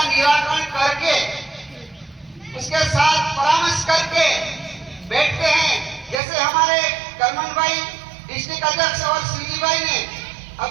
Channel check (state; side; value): drops out; left; at 6.2 s